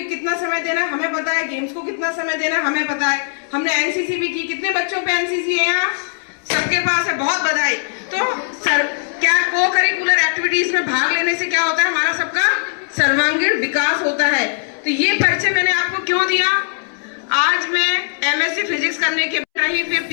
कितना समय देना है हमें पता है, गेम्स को कितना समय देना है हमें पता है। हमने एनसीसी भी की। कितने बच्चों पे एनसीसी है यहाँ, सबके पास है, बहुत बधाई। तो सर क्या को करिकुलर एक्टिविटीज में भाग लेने से क्या होता है, हमारा सबका सर्वांगीण विकास होता है। तो ये परिचय मैंने आपको क्यों दिया, आज मैं एमएससी फिजिक्स करने के बाद ही फिर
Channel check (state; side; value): silent; right; 67 dB below the other